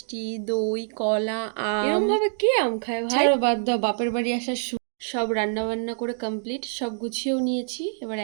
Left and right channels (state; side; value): silent; left; digital silence